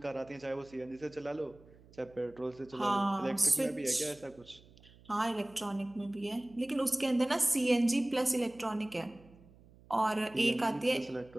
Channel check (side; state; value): right; noise; hum, 25 dB below the sound